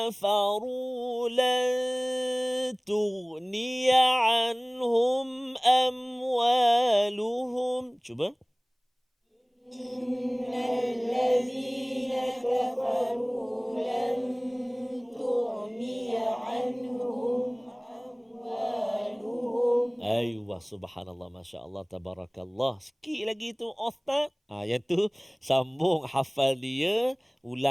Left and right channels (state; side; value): identical; both; correlation 1.00